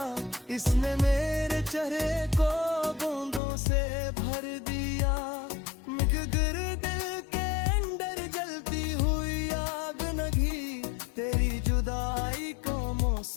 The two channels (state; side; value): drops out; right; at 3.4 s